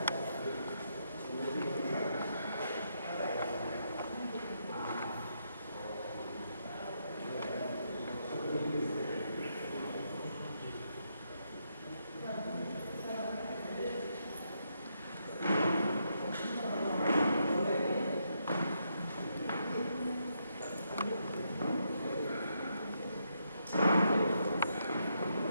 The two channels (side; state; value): both; inverted; correlation -0.79